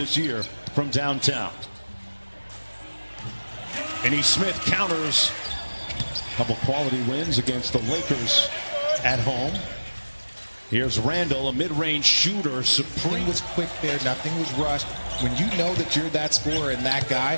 year from downtown. Finney Smith counters a couple quality wins against the Lakers at home. Here's Randall, a mid-range shooter, supreme. Was quick there, nothing was rushed. When you know that you're that scorer and that guy,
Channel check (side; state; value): both; inverted; correlation -1.00